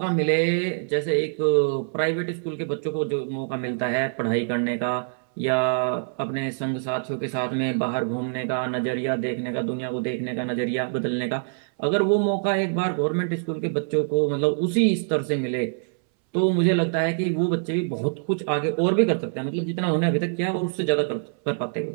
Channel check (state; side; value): silent; left; 62 dB below the other